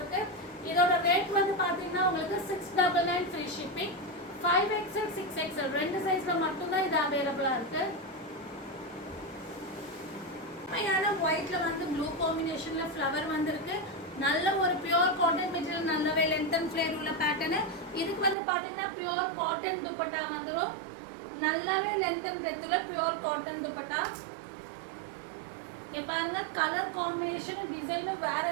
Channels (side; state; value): left; drops out; at 18.4 s